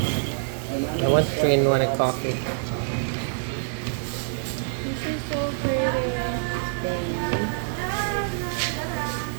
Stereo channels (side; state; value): left; silent; digital silence